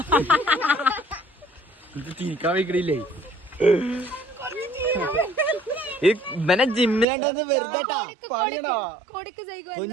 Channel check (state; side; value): drops out; left; at 7.1 s